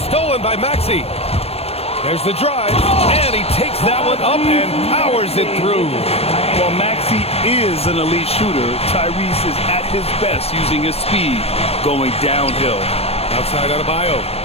stolen by Maxey. There's the drive, and he takes that one up and powers it through. While Maxey is an elite shooter, Tyrese is at his best using his speed going downhill. Outside Adebayo.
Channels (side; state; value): right; late; 0.29 ms